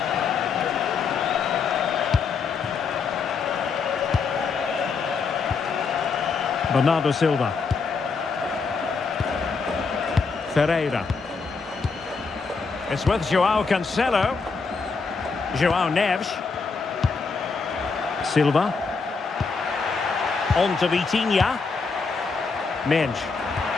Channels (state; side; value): quieter; right; 4.9 dB